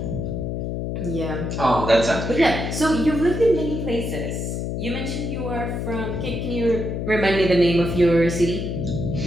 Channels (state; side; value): noise; left; hum, 3 dB below the sound